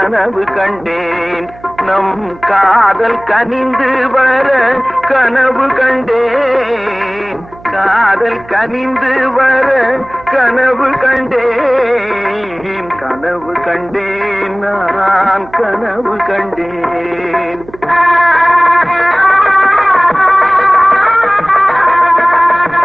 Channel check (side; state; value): right; noise; hum, 21 dB below the sound